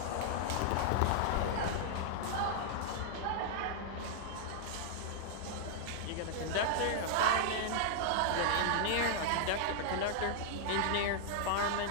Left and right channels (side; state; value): both; different; correlation -0.01